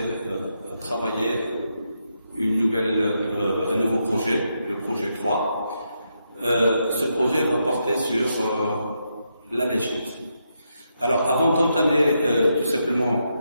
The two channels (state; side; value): inverted; both; correlation -0.82